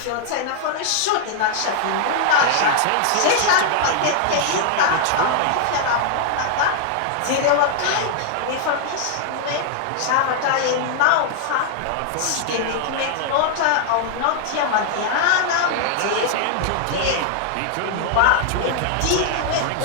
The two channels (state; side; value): different; both; correlation 0.00